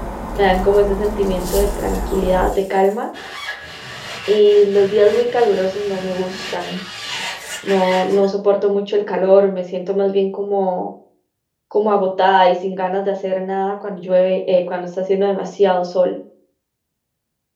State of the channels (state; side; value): identical; both; correlation 1.00